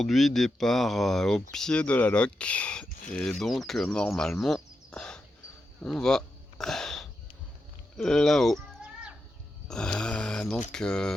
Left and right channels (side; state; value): both; normal; correlation 0.87